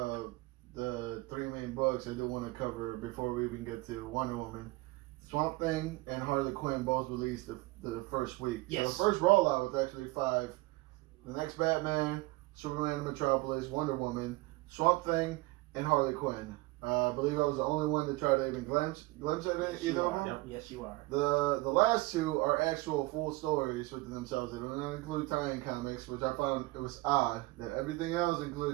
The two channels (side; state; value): left; quieter; 21.9 dB